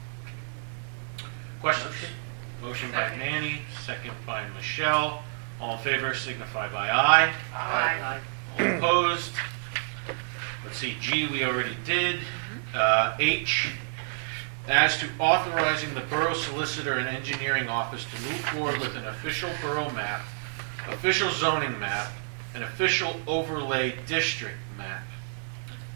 Questions? Motion by Manny, second by Michelle. All in favor signify by aye. Aye. All opposed? Let's see, G we already did. H, as to authorizing the Borough Solicitor and Engineering Office to move forward with an official borough map, official zoning map, an official overlay district map.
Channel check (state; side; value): silent; left; digital silence